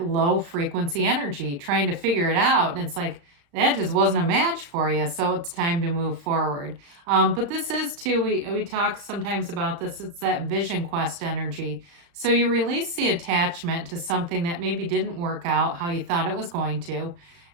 low frequency energy, trying to figure it out. And it's like, that just wasn't a match for you. So it's time to move forward. But this is too, we talk sometimes about this. It's that vision quest energy. So you release the attachment to something that maybe didn't work out how you thought it was going to.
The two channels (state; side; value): late; left; 35 ms